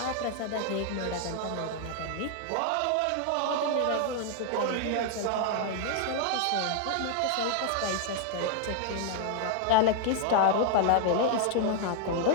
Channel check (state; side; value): different; both; correlation 0.00